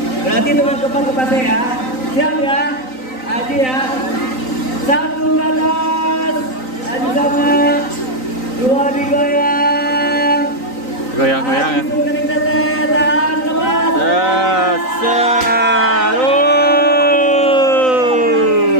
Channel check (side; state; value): right; late; 3.9 ms